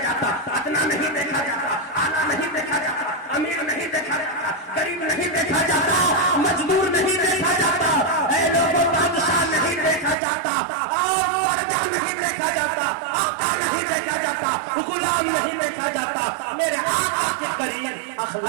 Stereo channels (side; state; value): left; drops out; at 10.2 s